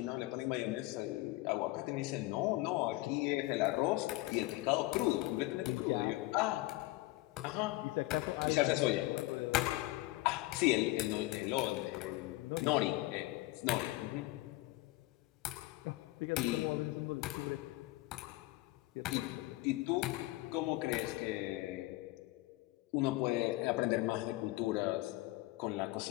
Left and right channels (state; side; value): quieter; right; 19.7 dB